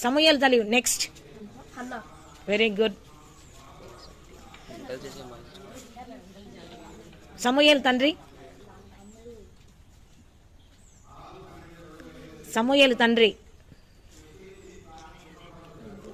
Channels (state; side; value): identical; both; correlation 1.00